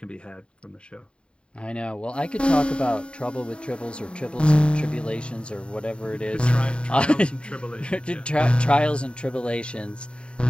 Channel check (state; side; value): late; right; 0.054 ms